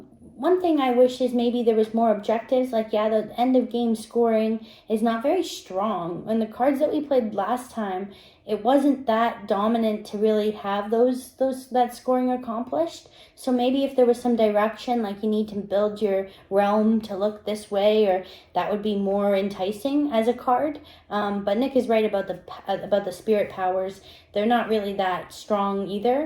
One thing I wish is maybe there was more objectives. Like, the end of game scoring is not very strong. And the cards that we played last time, it wasn't that dominant to really have that scoring accomplished. So maybe if there was some direction, like you need to build your realm to look this way, or that would be more enticing as a card. But Nick is right about the spirit powers. They're not really that strong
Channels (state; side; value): identical; both; correlation 1.00